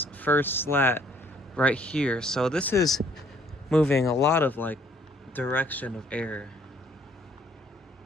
first slat right here. So this is moving a lot of like direction of air.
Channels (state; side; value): normal; both; correlation 0.62